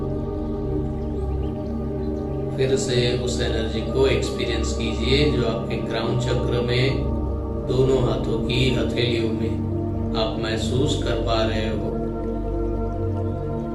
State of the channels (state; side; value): identical; both; correlation 1.00